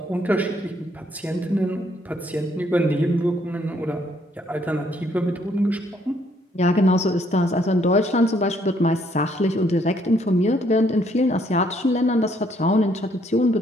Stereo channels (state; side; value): normal; both; correlation 0.68